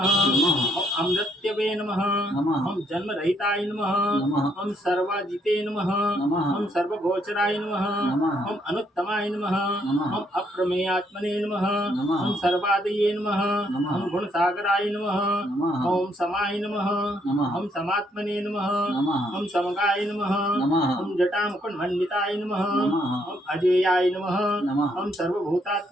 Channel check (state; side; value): normal; both; correlation 0.72